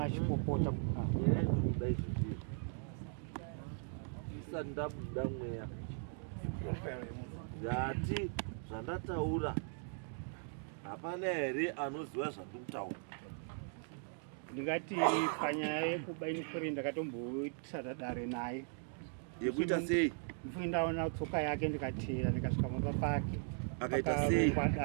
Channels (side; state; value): left; silent; 52 dB below the other